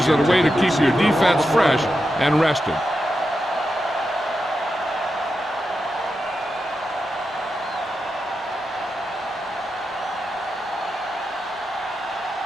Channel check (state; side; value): normal; both; correlation 0.88